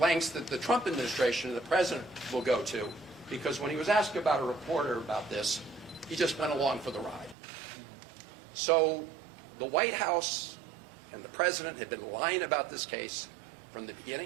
that the Trump administration and the president will go to, because when he was asked about a reporter about this, he just went along for the ride. So the White House and the president have been lying about this case from the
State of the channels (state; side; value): drops out; left; at 7.4 s